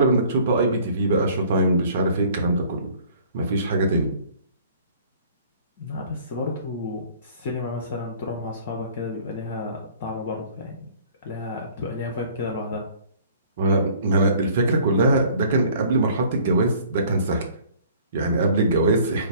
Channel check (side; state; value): both; inverted; correlation -0.53